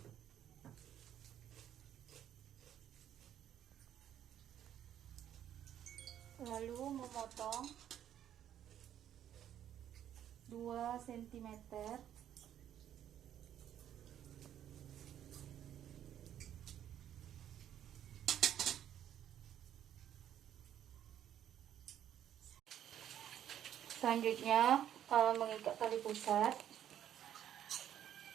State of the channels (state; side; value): quieter; left; 10.6 dB